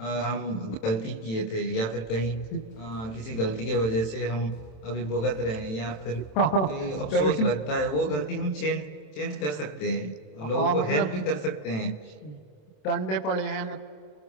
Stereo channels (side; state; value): right; late; 27 ms